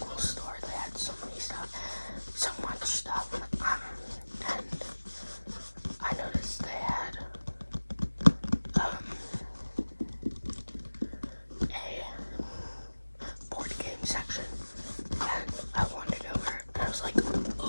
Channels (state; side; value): inverted; both; correlation -1.00